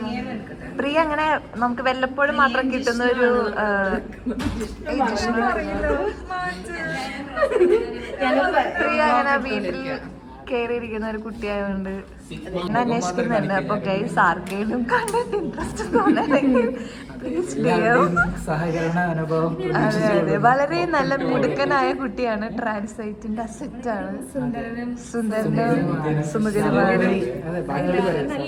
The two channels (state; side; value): identical; both; correlation 1.00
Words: പ്രിയ അങ്ങനെ നമുക്ക് വല്ലപ്പോഴും മാത്രം കിട്ടുന്ന ഒരു പ്രിയ അങ്ങനെ വീട്ടിൽ കയറിയിരിക്കുന്ന ഒരു കുട്ടിയായതുകൊണ്ട് അന്വേഷിക്കുന്നുണ്ട്. അപ്പൊ ഗൈസ് ആർക്കെങ്കിലും കണ്ടിട്ട് ഇൻട്രസ്റ്റ് തോന്നണമെങ്കിൽ അതെ, വളരെ നല്ല മിടുക്കനായ കുട്ടിയാണ്. ട്രാൻസ്ലൈറ്റിന്റെ അസെറ്റ് ആണ്. സുന്ദരനും സുമുഖനുമായ